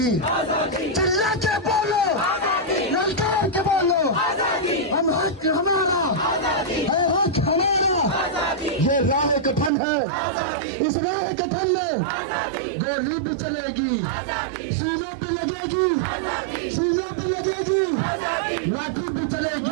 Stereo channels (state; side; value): drops out; left; at 9.7 s